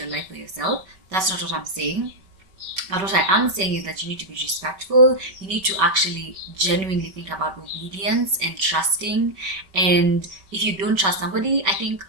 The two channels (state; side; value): late; left; 5.2 ms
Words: life for yourself. That's not what I'm saying. But what I am saying is that you need to be respectful. You need to actually genuinely think about obedience and trusting. And if you don't trust somebody, I think